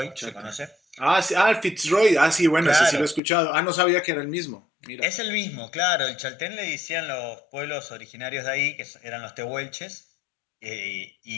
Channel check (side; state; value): right; drops out; at 3.2 s